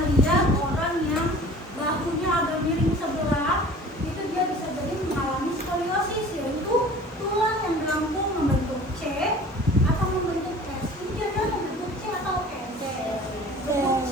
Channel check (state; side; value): normal; both; correlation 0.45